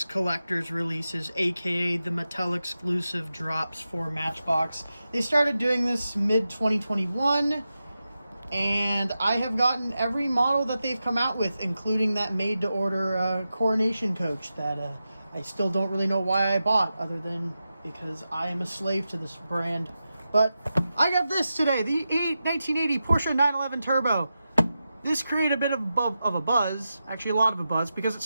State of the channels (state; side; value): inverted; both; correlation -0.91